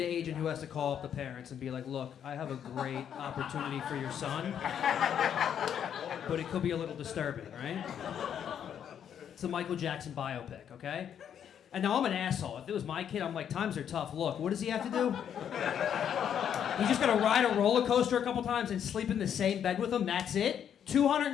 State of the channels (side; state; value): right; quieter; 8.9 dB